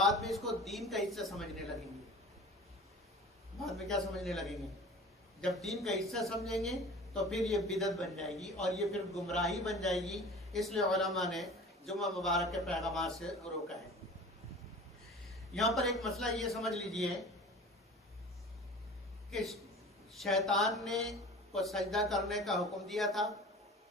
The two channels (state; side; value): normal; both; correlation 0.40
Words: میں اس کو دین کا حصہ سمجھنے لگیں گے. بعد میں کیا سمجھنے لگیں گے؟ جب دین کا حصہ سمجھیں گے تو پھر یہ بدعت بن جائے گی اور یہ پھر گمراہی بن جائے گی. اس لیے علماء نے جمعہ مبارک کے پیغامات سے روکا ہے. یہاں پر ایک مسئلہ یہ سمجھ لیجئے کہ شیطان نے کو سجدہ کرنے کا حکم دیا تھا،